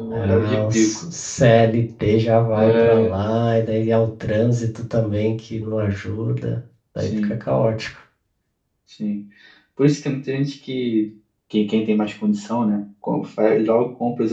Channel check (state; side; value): identical; both; correlation 1.00